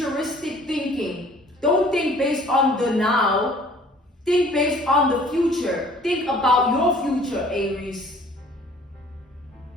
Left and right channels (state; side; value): normal; both; correlation 0.54